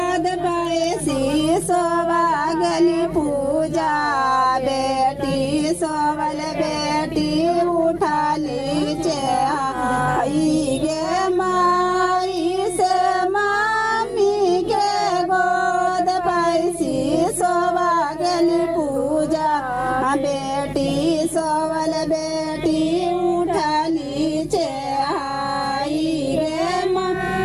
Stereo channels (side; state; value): both; identical; correlation 1.00